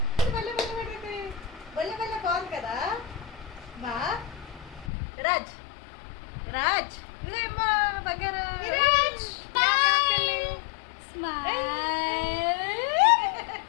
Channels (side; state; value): right; drops out; at 4.9 s